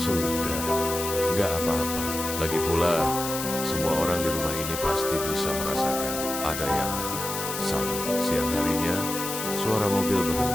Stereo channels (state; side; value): noise; left; hiss, 5 dB below the sound